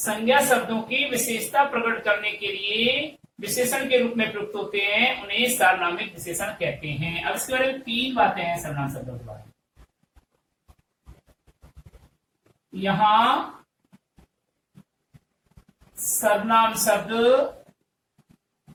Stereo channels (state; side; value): identical; both; correlation 1.00